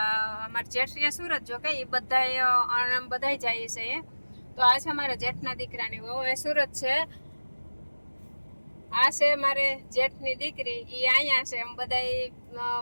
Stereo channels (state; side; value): inverted; both; correlation -1.00